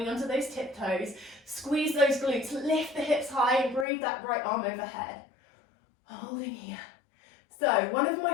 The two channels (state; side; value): drops out; right; at 3.9 s